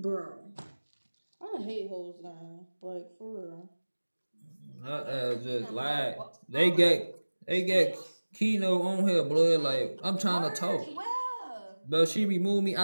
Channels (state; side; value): inverted; both; correlation -1.00